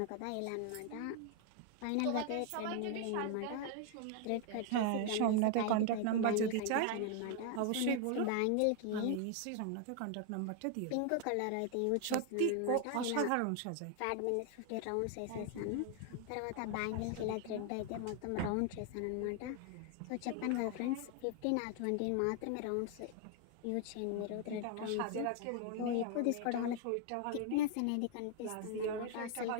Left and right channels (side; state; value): both; different; correlation 0.00